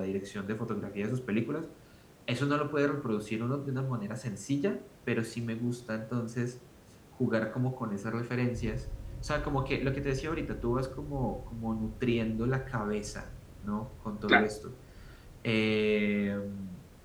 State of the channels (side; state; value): both; identical; correlation 1.00